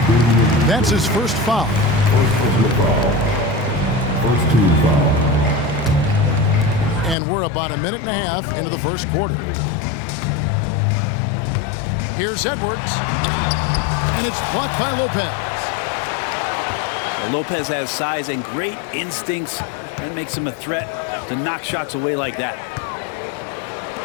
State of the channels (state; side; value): drops out; right; at 7.2 s